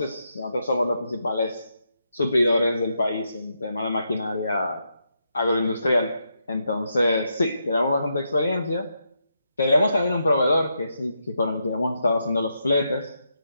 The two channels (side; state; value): both; inverted; correlation -0.82